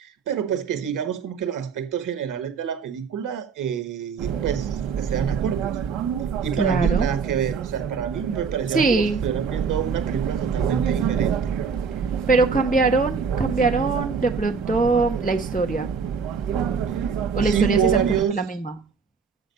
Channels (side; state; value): left; quieter; 5.5 dB